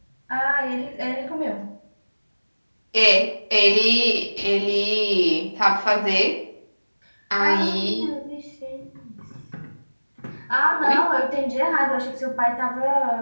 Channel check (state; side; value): inverted; both; correlation -1.00